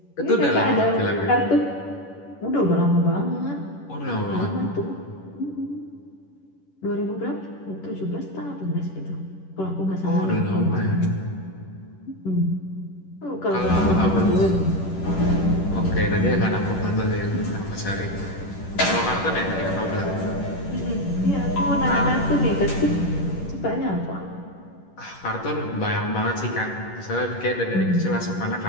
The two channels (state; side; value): late; right; 11 ms